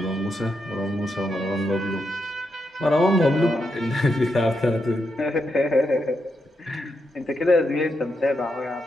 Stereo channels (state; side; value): normal; both; correlation 0.83